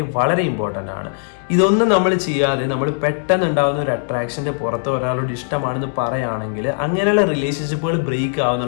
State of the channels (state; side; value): silent; right; digital silence